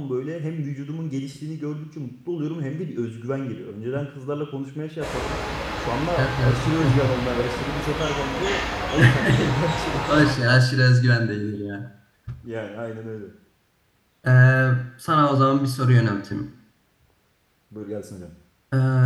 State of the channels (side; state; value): both; identical; correlation 1.00